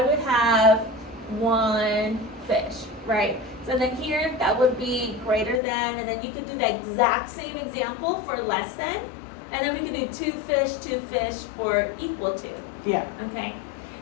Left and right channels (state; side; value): drops out; right; at 5.6 s